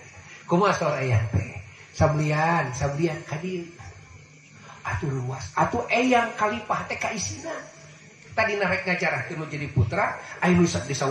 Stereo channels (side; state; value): both; identical; correlation 1.00